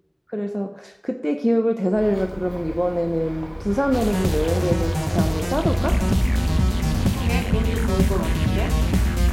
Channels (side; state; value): both; identical; correlation 1.00